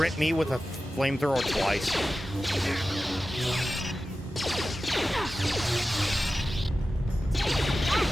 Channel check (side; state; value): both; normal; correlation 0.94